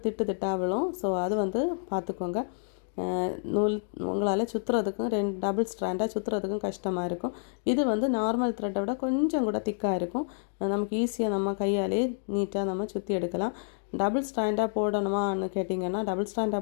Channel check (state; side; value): silent; right; digital silence